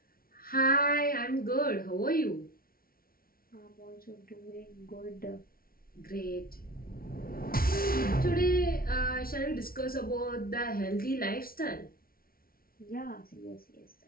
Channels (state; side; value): late; right; 0.43 ms